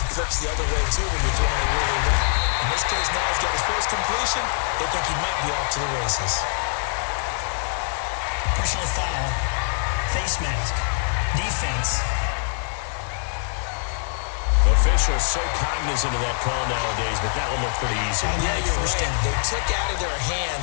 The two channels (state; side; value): silent; right; digital silence